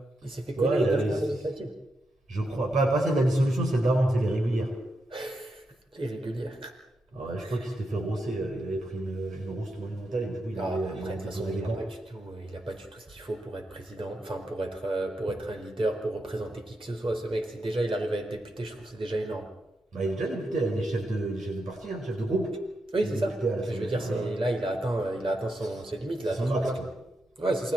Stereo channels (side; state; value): both; normal; correlation 0.85